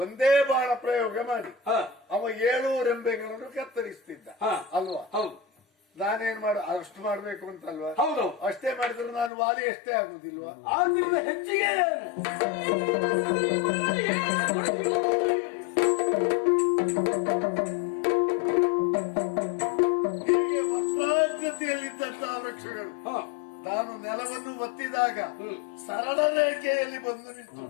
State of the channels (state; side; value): drops out; right; at 9.3 s